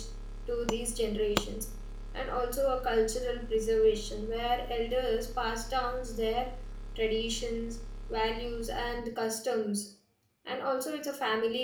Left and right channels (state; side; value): identical; both; correlation 1.00